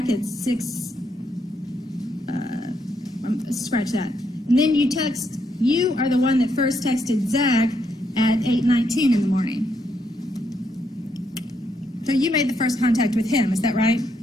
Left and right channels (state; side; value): normal; both; correlation 0.77